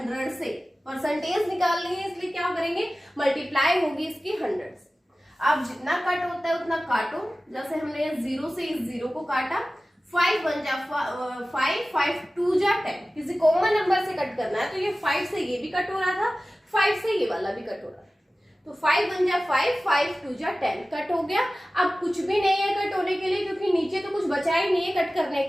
से. परसेंटेज निकालनी है इसलिए क्या करेंगे, मल्टीप्लाई होगी इसकी 100 से. अब जितना कट होता है उतना काटो. जैसे हमने 0 से इस 0 को काटा, 5 1 जा 5, 5 2 जा 10. किसी कॉमन नंबर से कट करना है, तो ये 5 से ये भी कट हो रहा था, 5 से ये वाला भी कट हो रहा था. तो 5 1 जा 5, 5 2 जा 10 कट हो गया. अब कुछ भी नहीं है कट होने के लिए, क्योंकि नीचे तो कुछ बचा ही नहीं है कट करने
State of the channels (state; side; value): normal; both; correlation 0.96